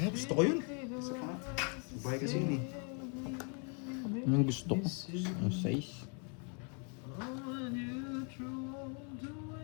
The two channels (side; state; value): right; quieter; 38.2 dB